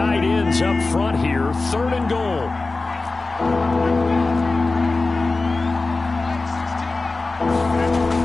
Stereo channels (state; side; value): quieter; right; 3.5 dB